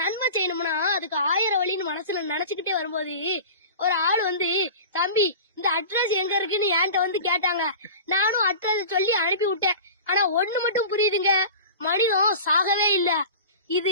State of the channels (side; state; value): both; inverted; correlation -0.36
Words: செய்யணும்னா அதுக்கு 1000 வழின்னு மனசுல நினைச்சுக்கிட்டே வரும்போது ஒரு ஆள் வந்து, தம்பி இந்த அட்ரஸ் எங்க இருக்குன்னு என்கிட்ட வந்து கேட்டாங்க. நானும் அட்ரஸ் சொல்லி அனுப்பி விட்டேன். ஆனா ஒண்ணு மட்டும் புரியுதுங்க, மனிதன் சாகவே இல்ல.